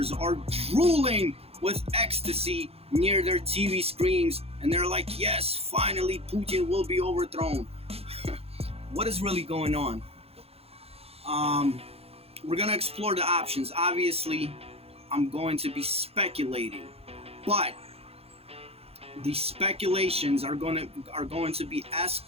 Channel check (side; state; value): left; late; 0.29 ms